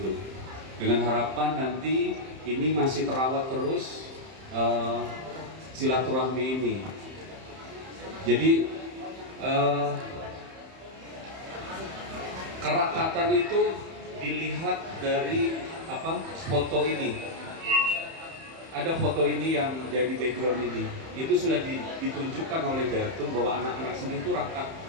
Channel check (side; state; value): left; late; 31 ms